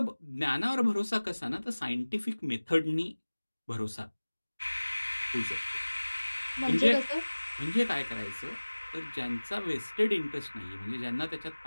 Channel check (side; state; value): both; inverted; correlation -1.00